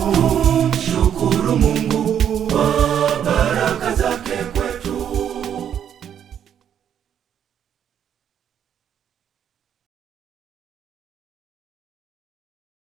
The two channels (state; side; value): quieter; left; 9.1 dB